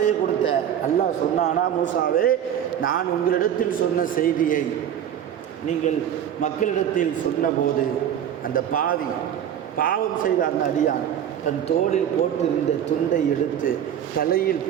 கொடுத்த? அல்லாஹ் சொன்னானா, மூசாவே நான் உங்களிடத்தில் சொன்ன செய்தியை நீங்கள் மக்களிடத்தில் சொன்னபோது அந்த பாவி பாவம் செய்த அந்த அடியான் தன் தோளில் போட்டிருந்த துண்டை எடுத்து தலையில்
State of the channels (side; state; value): left; quieter; 9.7 dB